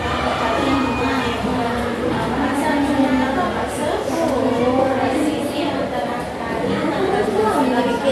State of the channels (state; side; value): identical; both; correlation 1.00